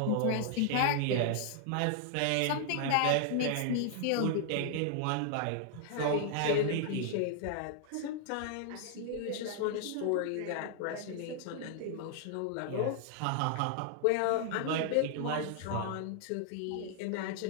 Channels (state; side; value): different; both; correlation 0.00